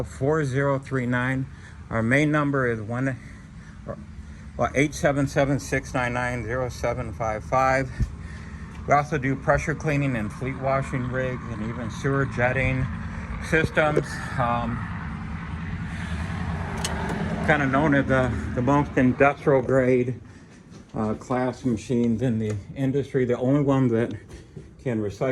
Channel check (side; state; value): both; identical; correlation 1.00